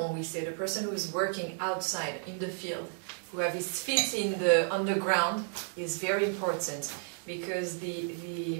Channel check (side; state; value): left; silent; 56 dB below the other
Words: we say, the person who is working outside in the field, who have his feet in the underground, is very important, because